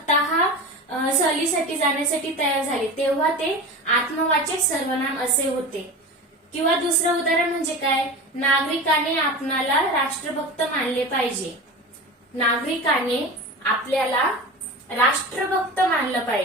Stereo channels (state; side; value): normal; both; correlation 0.30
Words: सहलीसाठी जाण्यासाठी तयार झाले तेव्हा ते आत्मवाचक सर्वनाम असे होते. किंवा दुसरं उदाहरण म्हणजे काय, नागरिकाने आपणाला राष्ट्रभक्त मानले पाहिजे. नागरिकाने आपल्याला राष्ट्रभक्त मानलं